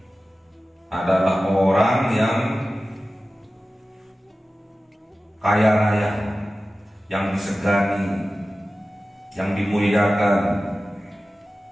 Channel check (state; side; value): normal; both; correlation 0.95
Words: adalah orang yang kaya raya, yang disegani, yang dimuliakan,